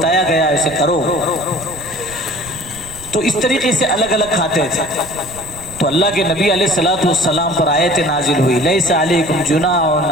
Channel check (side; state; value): right; noise; rumble, 17 dB below the sound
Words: گیا اسے کرو۔ تو اس طریقے سے الگ الگ کھاتے تھے۔ تو اللہ کے نبی علیہ الصلوۃ والسلام پر آیت نازل ہوئی، لیس علیکم جناح